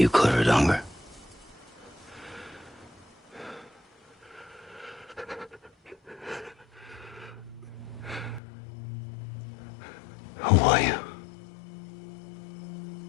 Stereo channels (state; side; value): drops out; right; at 8.4 s